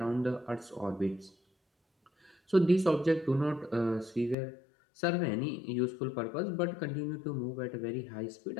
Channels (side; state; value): right; drops out; at 4.4 s